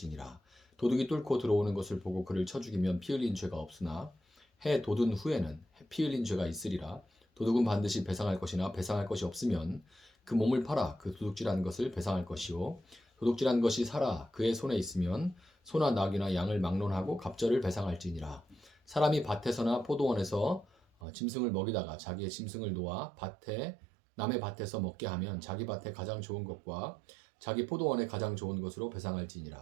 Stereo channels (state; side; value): drops out; left; at 20.9 s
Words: 도둑이 뚫고 들어오는 것을 보고 그를 쳐 죽이면 피 흘린 죄가 없으나 해 돋은 후에는 피 흘린 죄가 있으리라. 도둑은 반드시 배상할 것이나 배상할 것이 없으면 그 몸을 팔아 그 도둑질한 것을 배상할 것이요 도둑질한 것이 살아 그의 손에 있으면 소나 낙이나 양을 막론하고 갑절을 배상할지니라. 사람이 밭에서나 포도원에서 짐승을 먹이다가 자기의 짐승을 놓아 남의 밭에서 먹게 하면 자기 밭에 가장 좋은 것과 자기 포도원에 가장 좋은 것으로